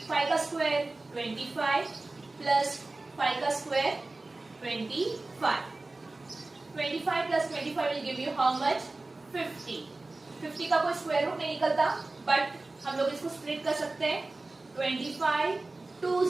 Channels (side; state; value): left; quieter; 3.2 dB